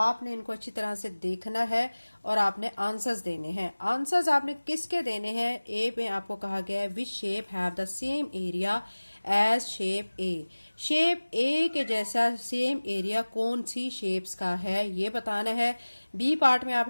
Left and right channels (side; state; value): both; inverted; correlation -1.00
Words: इनको अच्छी तरह से देखना है और आपने आंसर्स देने हैं। आंसर्स आपने किसके देने हैं? ए में आपको कहा गया है which shape have the same area as shape A. Shape A के जैसा सेम एरिया कौन सी शेप्स का है, ये बताना है। बी पार्ट में